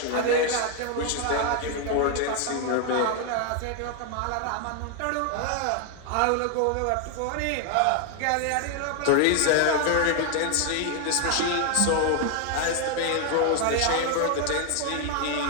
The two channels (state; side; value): different; both; correlation 0.00